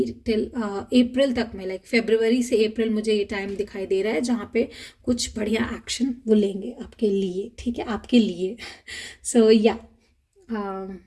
till April तक में, like February से April मुझे ये टाइम दिखाई दे रहा है जहाँ पे कुछ बढ़िया एक्शन वो लेंगे आपके लिए, ठीक है, आपके लिए. So yeah,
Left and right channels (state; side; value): identical; both; correlation 1.00